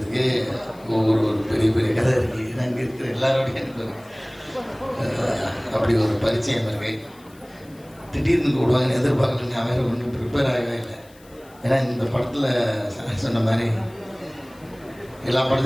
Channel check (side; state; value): left; noise; hiss, 27 dB below the sound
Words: ஒரு பெரிய பெரிய கதை இருக்குது. அங்கே இருக்கிற எல்லாரோடையும் எனக்கு அப்படி ஒரு பரிச்சயம் இருக்கு. திடீர்னு கூடுவாங்கன்னு எதிர்பார்க்கல. நான் வேறு ஒன்றும் ப்ரிப்பேர் ஆகவே இல்லை. ஏன்னா இந்த படத்தில் சொன்ன மாதிரி எல்லா